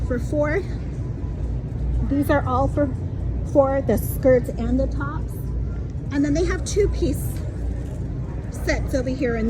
for $4. These are all for the skirts and the tops. And then they have 2-piece sets over here,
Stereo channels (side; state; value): both; identical; correlation 1.00